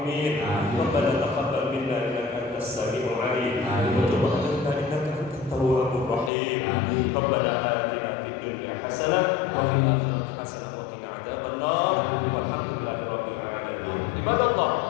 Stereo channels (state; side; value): drops out; right; at 6.3 s